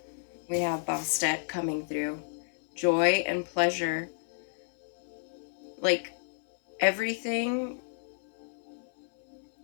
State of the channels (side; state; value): right; silent; 57 dB below the other